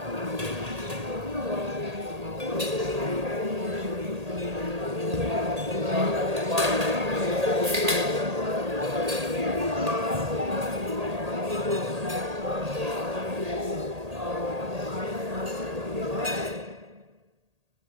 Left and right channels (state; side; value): late; left; 1.8 ms